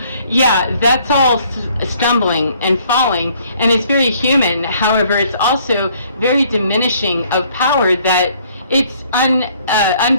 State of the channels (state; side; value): inverted; both; correlation -0.62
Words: Yeah, that's all stumbling and falling, and it's very human. However, it's also very diminishing of power, that it's